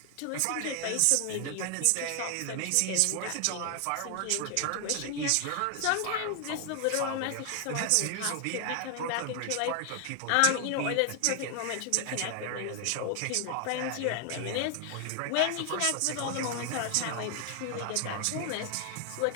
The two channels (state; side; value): different; both; correlation 0.00